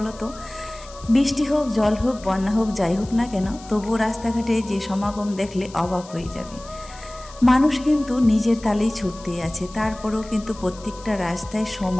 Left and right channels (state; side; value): noise; left; hiss, 20 dB below the sound